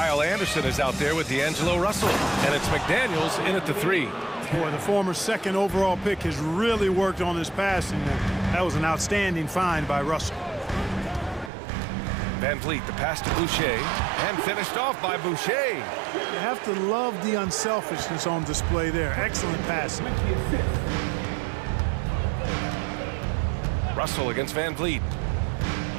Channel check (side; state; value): left; drops out; at 11.5 s